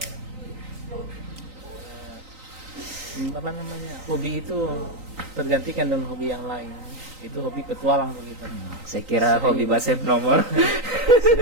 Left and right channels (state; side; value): late; left; 3.9 ms